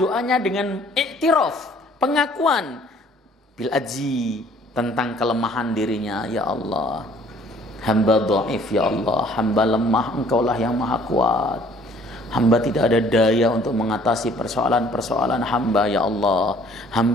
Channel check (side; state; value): both; normal; correlation 0.57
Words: dengan i'tiraf, pengakuan bil azzi, tentang kelemahan dirinya. Ya Allah, hamba dhaif, ya Allah, hamba lemah, Engkaulah yang maha kuat. Hamba tidak ada daya untuk mengatasi persoalan-persoalan hamba, ya Allah.